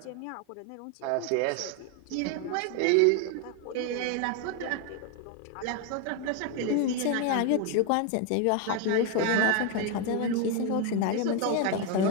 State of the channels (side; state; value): both; different; correlation 0.01